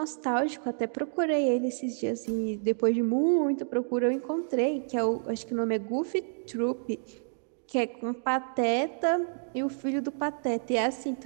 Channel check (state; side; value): silent; left; digital silence